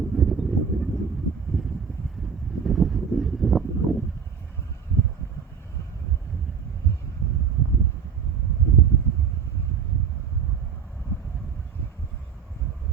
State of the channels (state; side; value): quieter; left; 6.9 dB